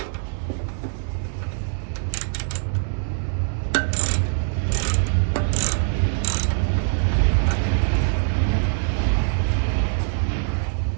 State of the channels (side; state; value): left; silent; 63 dB below the other